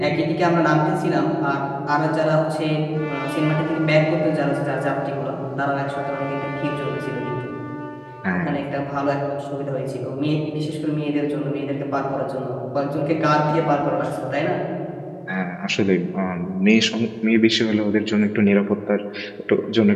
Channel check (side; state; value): both; identical; correlation 1.00